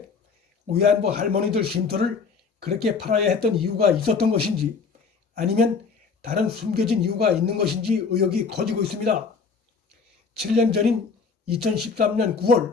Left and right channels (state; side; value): quieter; right; 5.1 dB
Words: 위안부 할머니들 쉼터를 그렇게 팔아야 했던 이유가 있었던 것인지, 아니면 다른 숨겨진 이유가 있는 것인지 의혹이 커지고 있습니다. 7년 전인 2013년